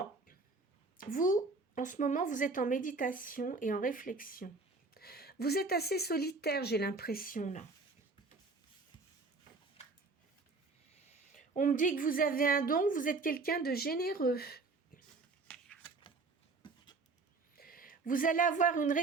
vous, en ce moment, vous êtes en méditation et en réflexion. Vous êtes assez solitaire, j'ai l'impression, là. On me dit que vous avez un don, vous êtes quelqu'un de généreux. Vous allez avoir une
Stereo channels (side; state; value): left; quieter; 3.8 dB